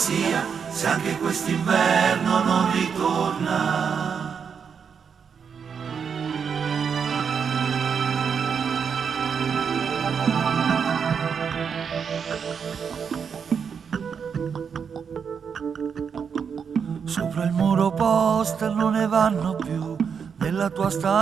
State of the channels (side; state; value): left; quieter; 6.7 dB